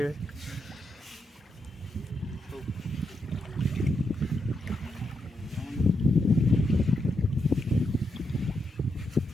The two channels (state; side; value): normal; both; correlation 0.82